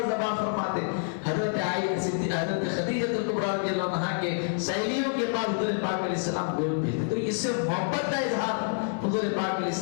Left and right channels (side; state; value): right; silent; 60 dB below the other